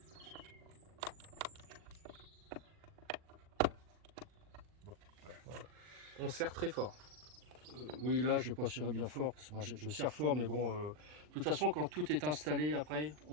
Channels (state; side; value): late; left; 40 ms